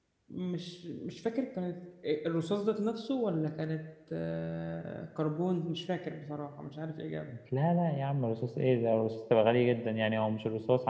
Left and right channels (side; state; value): both; identical; correlation 1.00